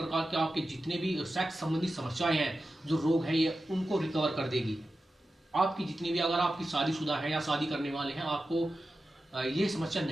के आपके जितने भी सेक्स संबंधी समस्याएं हैं, जो रोग है, ये उनको रिकवर कर देगी। आपकी जितनी भी, अगर आपकी शादीशुदा है या शादी करने वाले हैं, आपको ये समस्या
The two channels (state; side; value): normal; both; correlation 0.92